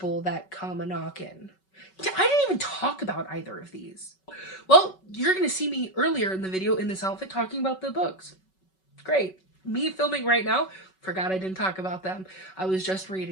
that come a knockin'. I didn't even talk about either of these. Well, you're going to see me earlier in the video in this outfit talking about the books. Great. Me filming right now, forgot I didn't talk about them. I was just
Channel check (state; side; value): late; right; 5.3 ms